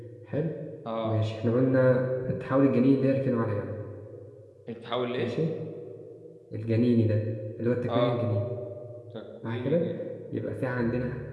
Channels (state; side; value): identical; both; correlation 1.00